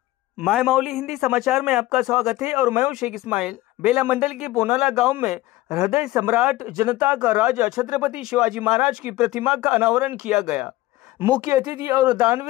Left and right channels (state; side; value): quieter; right; 17.3 dB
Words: माय मौली हिंदी समाचार में आपका स्वागत है और मैं हूं शेख इस्माइल। बेला मंडल के पोनाला गांव में हृदय सम्राट, जनता का राजा छत्रपति शिवाजी महाराज की प्रतिमा का अनावरण किया गया। मुख्य अतिथि और